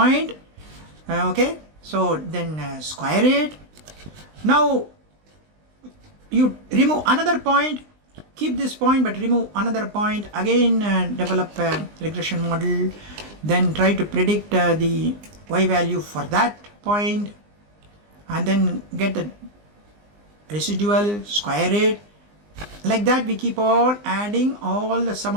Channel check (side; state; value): left; late; 20 ms